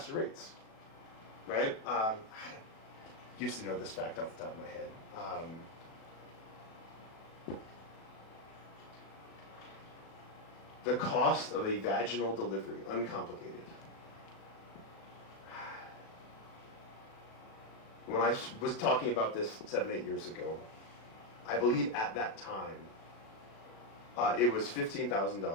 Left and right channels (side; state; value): right; late; 36 ms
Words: rates. Right? I used to know this fact off the top of my head. The cost of a vaginal delivery, uncomplicated. When I was talking about this 7-8 years ago, I believe at that time, it was